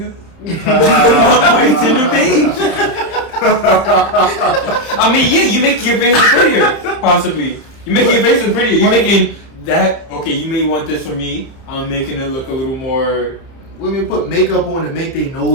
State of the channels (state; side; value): late; right; 30 ms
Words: on your Tinder page. I mean, yeah, you make your face look prettier, possibly. You make your face look prettier. You're making that okay. You may want this for me. I'm making it look a little more Women put makeup on to make their